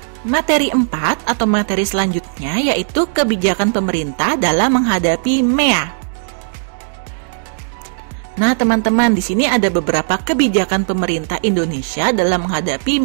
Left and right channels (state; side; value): silent; left; digital silence